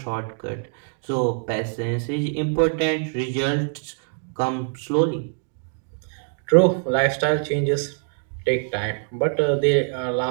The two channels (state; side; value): silent; left; digital silence